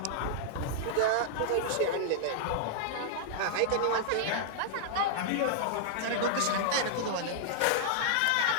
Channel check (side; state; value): both; different; correlation -0.01